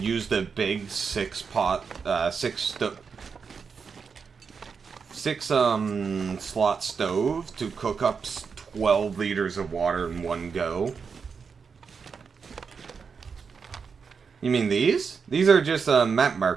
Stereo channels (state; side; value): quieter; left; 5.7 dB